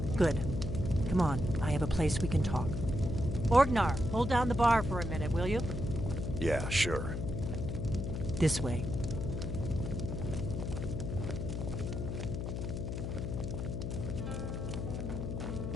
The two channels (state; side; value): noise; left; hum, 3 dB below the sound